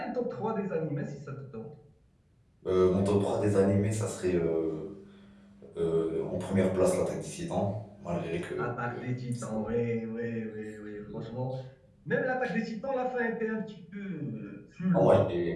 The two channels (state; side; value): identical; both; correlation 1.00